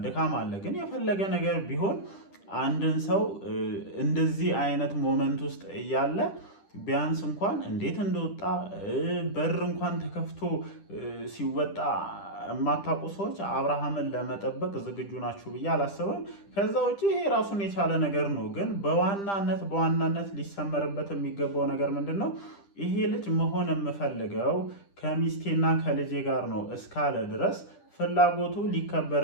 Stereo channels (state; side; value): late; right; 10 ms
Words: ድካም አለ። ግን የፈለገ ነገር ቢሆን አንድን ሰው እንደዚህ አይነት ሞመንት ውስጥ እያለ ቢያንስ እንኳን እንዴት እንደወጣ በር እንኳን ተከፍቶ ሲወጣ የማታውቁ ሰዎች አብርሃምን ለመጠበቅ ዝግጁ ናችሁ ብዬ አላስብም። ከዛ ውጭ ይሄ ራሱን የቻለ ነገር ነው። ግን በዋናነት ሊሰመርበት የሚገባው ነገር ምንድን ነው? ይሄ ልጅ መሆን የምፈልገው ከሚስቴና ከልጄ ጋር ነው እስካለ ድረስ ፍላጎቱ